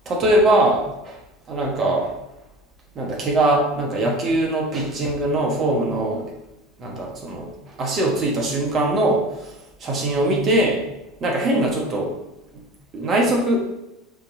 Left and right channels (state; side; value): normal; both; correlation 0.39